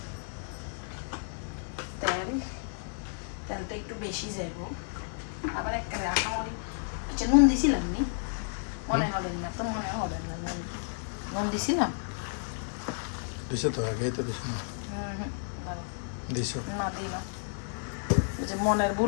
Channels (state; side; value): silent; right; 57 dB below the other